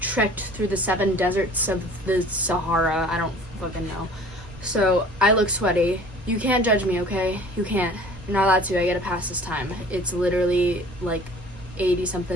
through the 7 deserts of the Sahara. I don't fucking know. So I look sweaty. You can't judge me, okay? You can't. You're not allowed to. I gotta pass this time. It's literally like 80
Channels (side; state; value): both; normal; correlation 0.48